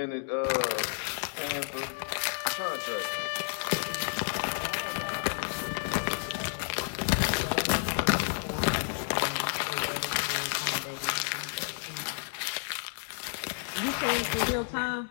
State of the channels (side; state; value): right; silent; digital silence